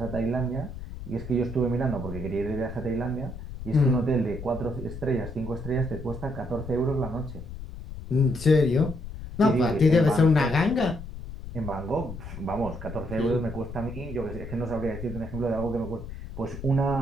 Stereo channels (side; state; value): left; noise; rumble, 10 dB below the sound